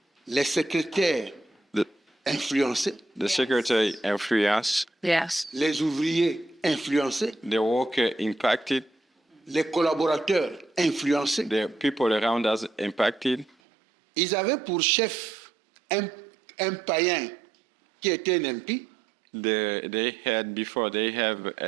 Les secrétaires The, influencés, the secretary influence, Yes. les ouvriers influencés, the worker impacted, les collaborateurs influencés. the people around us impacted. Ils avaient pour chef un païen qui était un impie, They had before they have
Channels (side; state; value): left; drops out; at 13.6 s